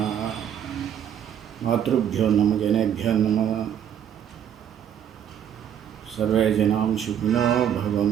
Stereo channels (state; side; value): quieter; left; 9.3 dB